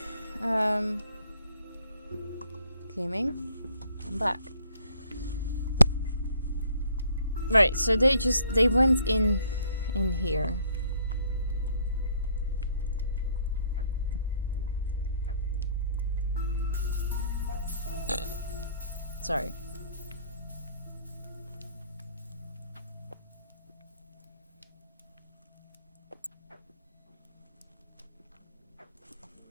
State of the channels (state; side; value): inverted; both; correlation -0.61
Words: Gaming. I'm back. Right, so they went in here. Sorry.